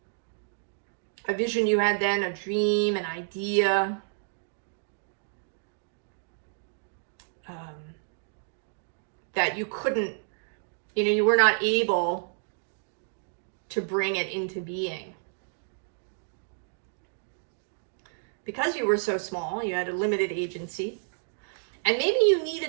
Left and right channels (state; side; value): silent; left; digital silence